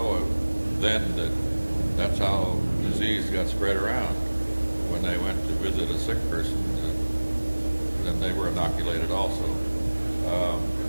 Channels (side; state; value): both; inverted; correlation -1.00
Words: then that that's how disease got spread around. When they went to visit a sick person, then they were inoculated also.